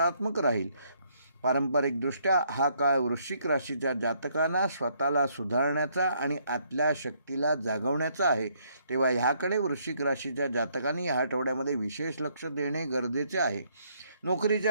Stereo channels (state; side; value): inverted; both; correlation -0.69